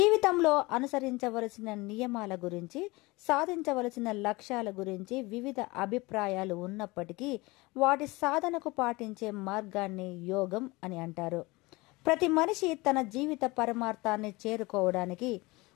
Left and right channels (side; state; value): right; quieter; 23.0 dB